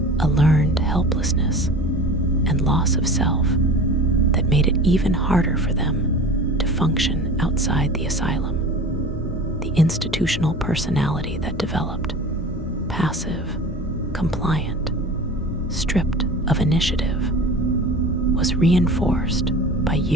a learned helplessness and loss of self that made it even harder for them to function outside the asylum. The institutional personality that developed, passive, compliant, stripped of initiative, was reinforced by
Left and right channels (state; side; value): normal; both; correlation 0.37